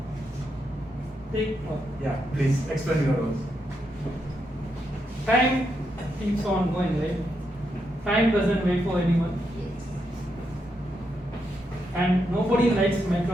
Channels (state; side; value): normal; both; correlation 0.82